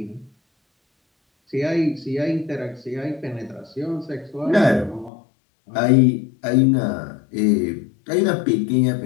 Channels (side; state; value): right; drops out; at 5.1 s